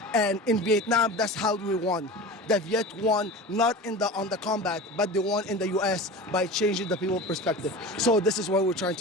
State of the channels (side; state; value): both; normal; correlation 0.33